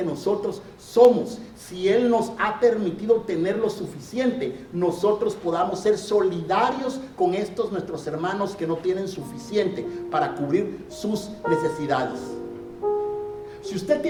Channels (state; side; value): identical; both; correlation 1.00